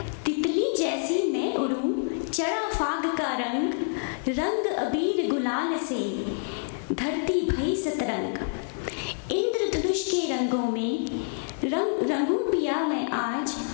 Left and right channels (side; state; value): right; silent; digital silence